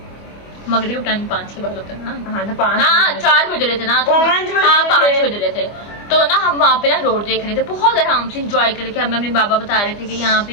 मगरिब टाइम 5 के बाद होता है ना। हाँ, 5 4 बज रहे थे ना, तो 5 बज रहे थे। तो ना हम वहाँ पे ना रोड देख रहे थे, बहुत आराम से इंजॉय करके। हमें अपने बाबा बता रहे थे कि यहाँ पे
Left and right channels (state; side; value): late; right; 25 ms